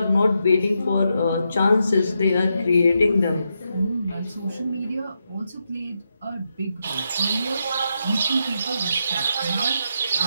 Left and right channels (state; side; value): inverted; both; correlation -0.83